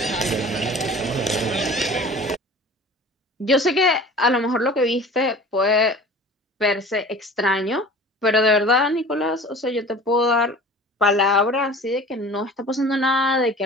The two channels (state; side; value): normal; both; correlation 0.42